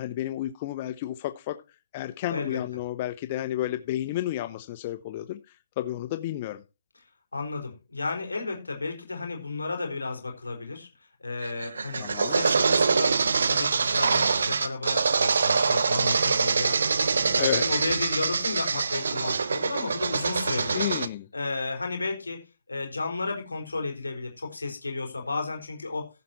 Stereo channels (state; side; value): inverted; both; correlation -0.80